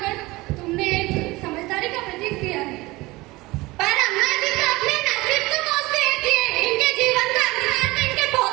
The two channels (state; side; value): quieter; left; 21.1 dB